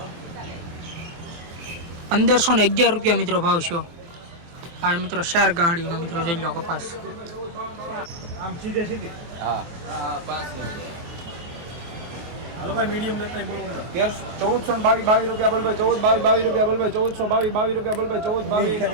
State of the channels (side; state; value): left; late; 23 ms